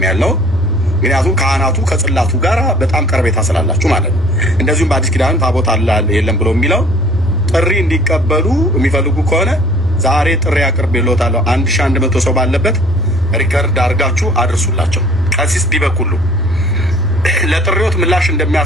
ያለው ምክንያቱም ካህናቱ ከጽላቱ ጋር በጣም ቀርቤታ ስላላችሁ ማለት ነው። እንደዚሁም በአዲስ ኪዳን ታቦት አለ የለም ብሎ የሚለው ጥሪ እንዲቀበሉ የሚፈልጉ ከሆነ ዛሬ ጥሪ አቅርቤልዎታለሁ። 1100 ሰው ባለበት ሪከርድ አድርጋችሁ አድርሱላቸው። ቀሲስ ዲበኩሉ ለጥሪዎት ምላሽ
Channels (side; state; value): both; normal; correlation 0.52